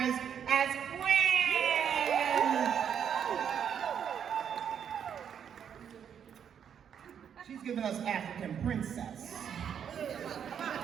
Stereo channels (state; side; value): quieter; left; 8.3 dB